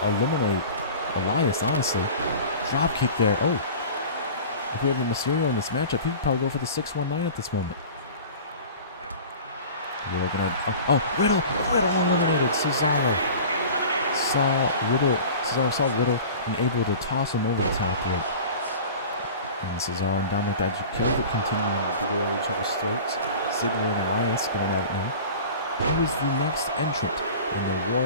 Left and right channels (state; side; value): inverted; both; correlation -0.39